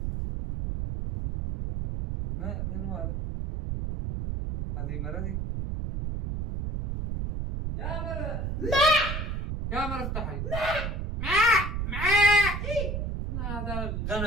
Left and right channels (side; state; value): right; noise; rumble, 3 dB below the sound